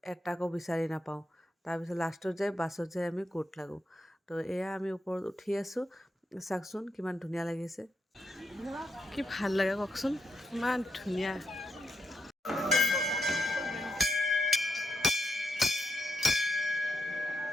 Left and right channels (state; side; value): normal; both; correlation 0.82